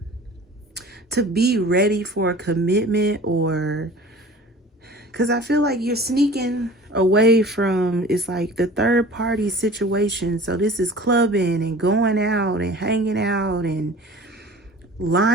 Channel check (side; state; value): both; normal; correlation 0.43